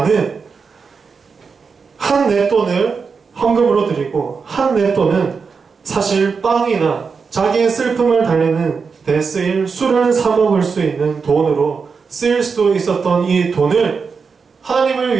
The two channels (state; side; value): quieter; left; 5.3 dB